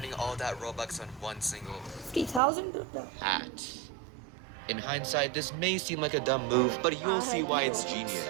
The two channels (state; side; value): drops out; left; at 2.4 s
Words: all that Robux on one single 50,000? hat. In hindsight, this may seem like a dumb move, but you'll see why it's